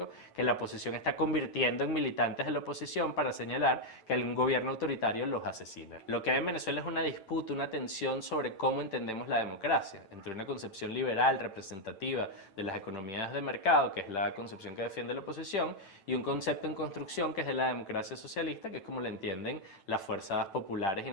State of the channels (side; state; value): right; late; 9.1 ms